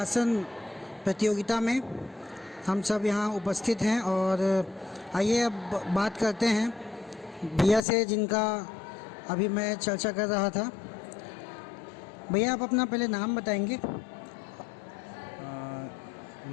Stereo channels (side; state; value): right; drops out; at 7.8 s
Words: प्रतियोगिता में हम सब यहाँ उपस्थित हैं और आइए अब बात करते हैं भैया से, जिनका अभी मैं चर्चा कर रहा था। भैया, आप अपना पहले नाम बताएंगे?